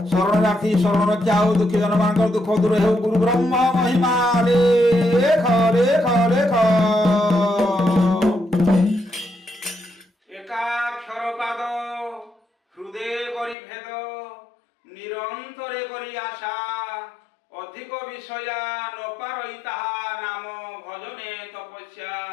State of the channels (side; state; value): right; drops out; at 13.6 s